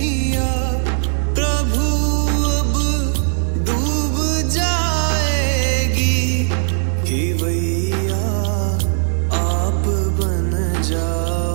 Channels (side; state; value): left; silent; digital silence